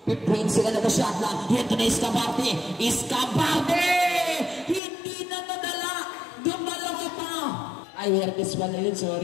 15 second na shot lang. Ito na Escabarte. Escabarte! Hindi na nadala. Dumalo ka pa. Ay, Hertes pala yun.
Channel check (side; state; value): right; drops out; at 4.8 s